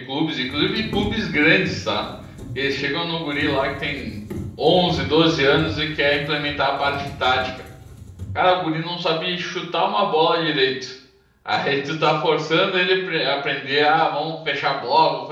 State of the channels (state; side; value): identical; both; correlation 1.00